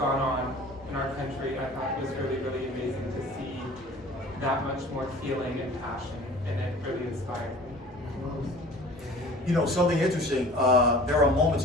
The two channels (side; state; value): both; normal; correlation 0.45